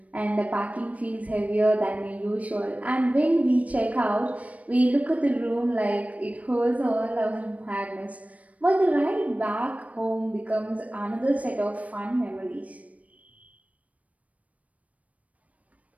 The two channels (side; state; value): left; late; 0.068 ms